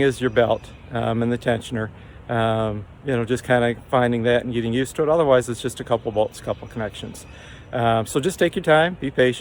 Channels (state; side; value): identical; both; correlation 1.00